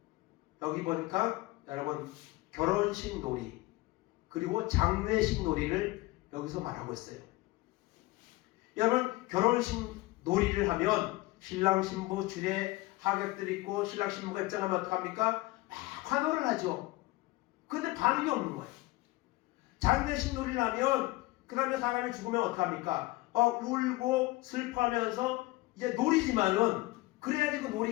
여기 보니까 여러분 결혼식 놀이 그리고 장례식 놀이를 여기서 말하고 있어요. 여러분 결혼식 놀이를 하면 신랑 신부 줄에 하객들 있고 신랑 신부가 입장하면 어떡합니까? 막 환호를 하죠. 근데 반응이 없는 거예요. 장례식 놀이를 하면 그 다음에 사람이 죽으면 어떡합니까? 울고 슬퍼하면서 이제 놀이지만은 그래야지 그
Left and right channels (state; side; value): quieter; right; 20.2 dB